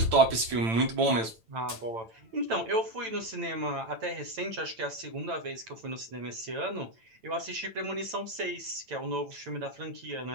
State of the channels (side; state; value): left; late; 8.9 ms